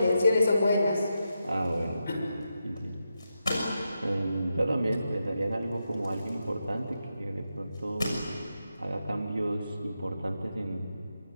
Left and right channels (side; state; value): both; inverted; correlation -0.86